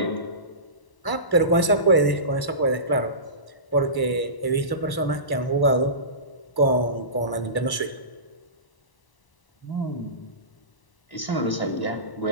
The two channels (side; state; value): right; late; 1.0 ms